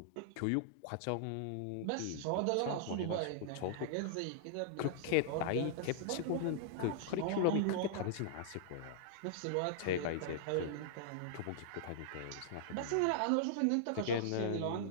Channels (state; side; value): different; both; correlation -0.01